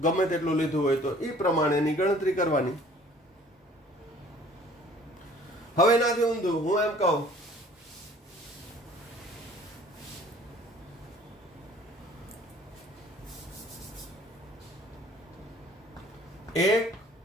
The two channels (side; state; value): both; normal; correlation 0.53